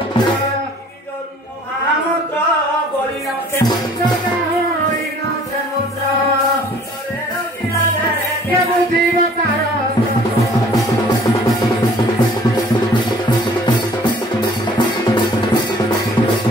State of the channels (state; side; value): normal; both; correlation 0.53